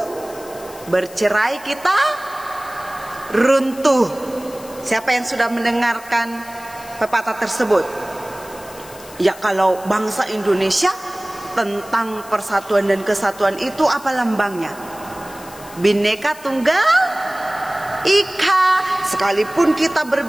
bercerai kita runtuh. Siapa yang sudah mendengarkan pepatah tersebut? Ya, kalau bangsa Indonesia tentang persatuan dan kesatuan itu apa lambangnya? Bhinneka Tunggal Ika. Sekalipun kita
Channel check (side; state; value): left; noise; hiss, 19 dB below the sound